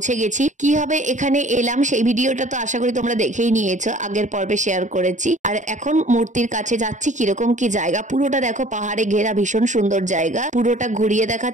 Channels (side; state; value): left; late; 0.36 ms